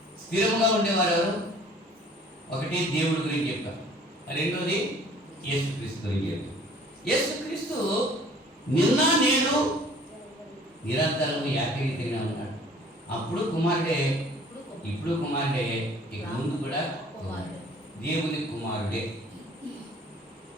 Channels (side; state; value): both; normal; correlation 0.53